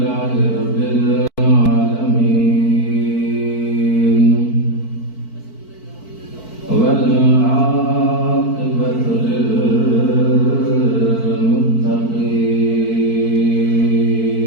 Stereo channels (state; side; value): late; right; 4.5 ms